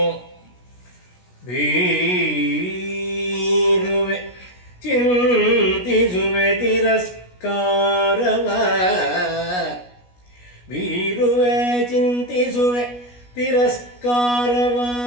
ಬೀರುವೆ ಚಿಂತಿಸುವೆ ತಿರಸ್ಕಾರವ, ಬೀರುವೆ ಚಿಂತಿಸುವೆ ತಿರಸ್ಕಾರವ,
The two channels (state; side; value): late; right; 16 ms